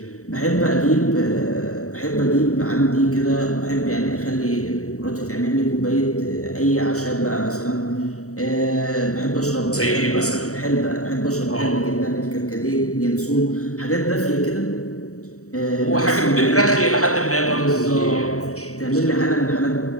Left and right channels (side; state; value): right; late; 0.65 ms